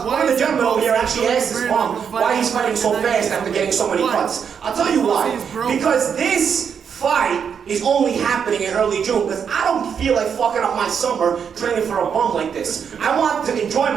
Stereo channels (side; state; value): left; quieter; 7.2 dB